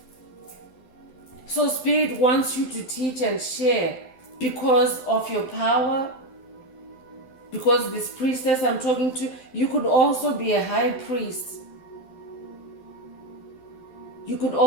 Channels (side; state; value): right; late; 12 ms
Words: So Spirit wants you to teach and share because of your power. Because this priestess I'm talking to, you could also be a high priest. You could